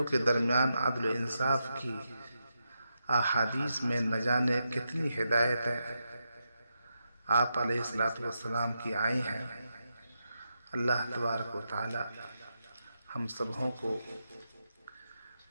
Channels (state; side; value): inverted; both; correlation -0.86